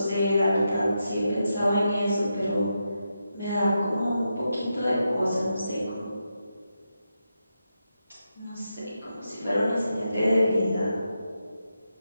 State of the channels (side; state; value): both; inverted; correlation -0.86